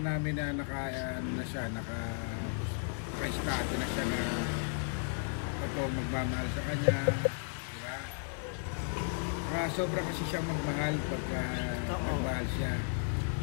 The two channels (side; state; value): right; silent; 55 dB below the other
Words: na naka-estado na siya na totoong magmamahal sa kanya, di ba? Sobra kasi siyang magmahal pagka magmahal siya.